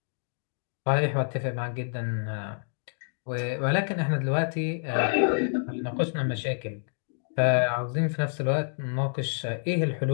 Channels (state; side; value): silent; right; digital silence